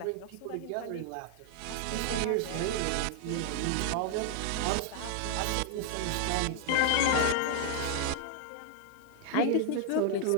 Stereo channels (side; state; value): both; different; correlation 0.00